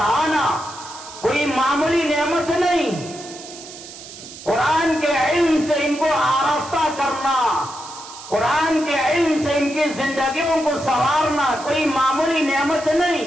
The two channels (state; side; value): noise; right; hiss, 15 dB below the sound